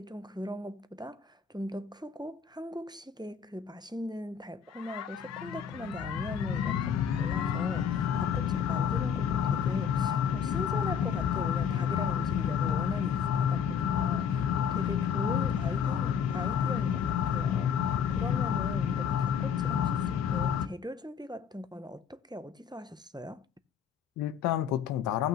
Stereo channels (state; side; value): quieter; right; 7.4 dB